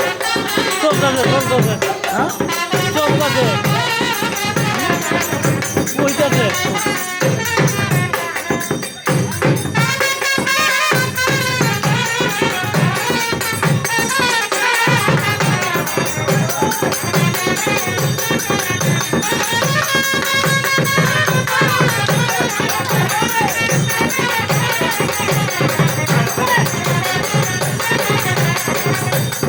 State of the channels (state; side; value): identical; both; correlation 1.00